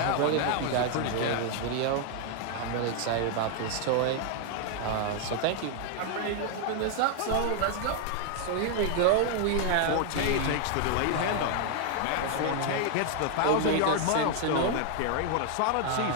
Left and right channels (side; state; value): both; different; correlation 0.00